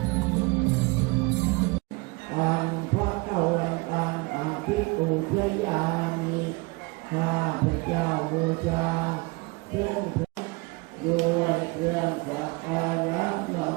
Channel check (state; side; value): quieter; left; 26.3 dB